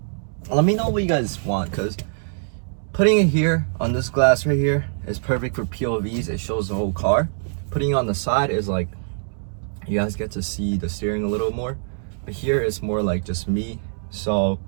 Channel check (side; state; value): left; silent; digital silence